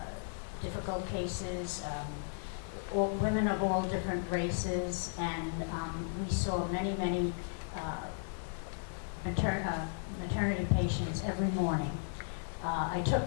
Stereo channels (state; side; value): silent; right; 54 dB below the other